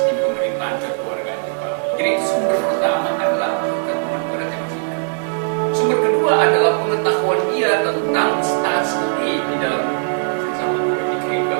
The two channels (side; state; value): left; silent; digital silence